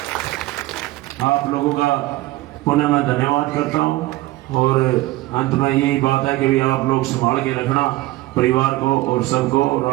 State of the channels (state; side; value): quieter; left; 18.2 dB